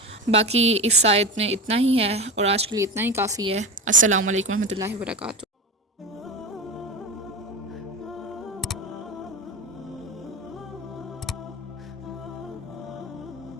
باقی اس آیت میں اتنا ہی ہے اور آج کے لیے اتنا ہی کافی ہے۔ السلام علیکم ورحمۃ اللہ وبرکاتہ۔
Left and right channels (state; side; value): normal; both; correlation 0.24